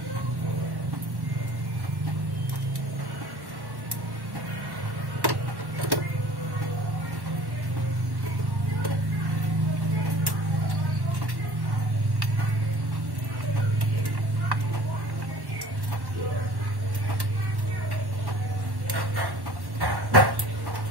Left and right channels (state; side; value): late; left; 1.1 ms